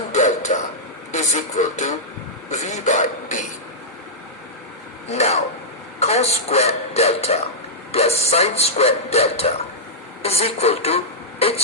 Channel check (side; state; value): both; normal; correlation -0.10